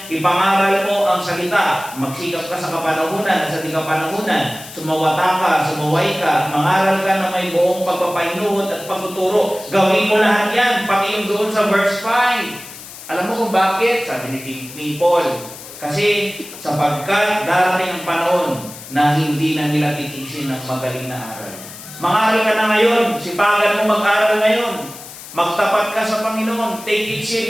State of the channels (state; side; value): noise; left; hiss, 15 dB below the sound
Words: ipangaral mo ang salita, magsikap ka sa kapanahunan at sa di kapanahunan, sumawata ka, sumuway ka, mangaral ka na may buong pagpapainuhod at pagtuturo. Gawin mo lahat yan, pati yung doon sa verse 5. Alam mo kung bakit? Sabi ni Paul, kasi sapagkat darating ang panahon na hindi na nila titisin ng magaling na aral. Mag-aral ka na ngayon, sipagan mo mag-aral ngayon. Magtapat ka sa Panginoon, take it